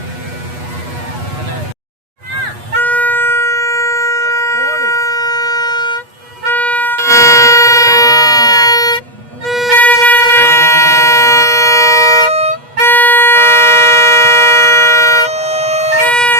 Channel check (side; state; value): left; late; 8.3 ms